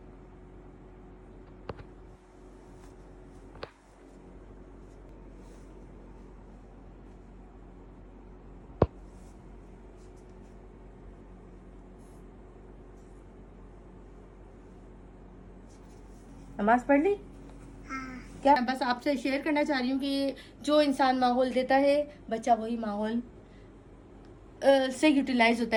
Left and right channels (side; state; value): both; identical; correlation 1.00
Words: नमाज पढ़ ली? क्या बस आपसे शेयर करना चाह रही हूँ कि जो इंसान माहौल देता है, बच्चा वही माहौल से यूटिलाइज होता